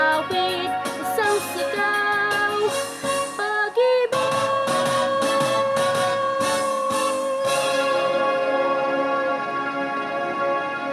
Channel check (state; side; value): identical; both; correlation 1.00